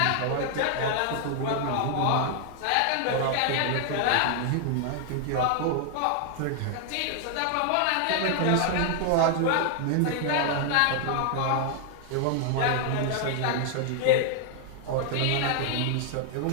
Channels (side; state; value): both; different; correlation 0.00